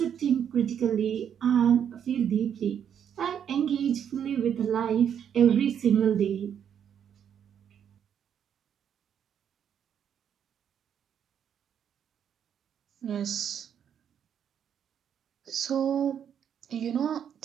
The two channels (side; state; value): left; quieter; 8.6 dB